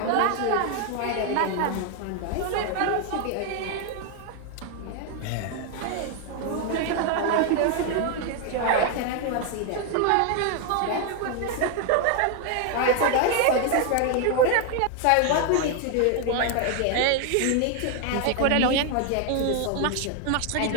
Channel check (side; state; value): both; different; correlation 0.01